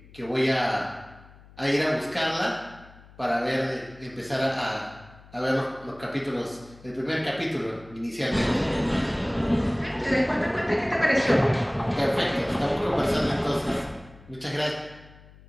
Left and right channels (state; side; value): noise; left; hum, 23 dB below the sound